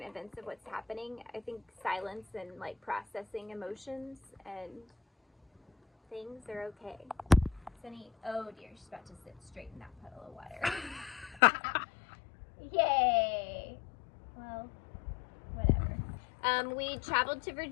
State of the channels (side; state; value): right; drops out; at 11.4 s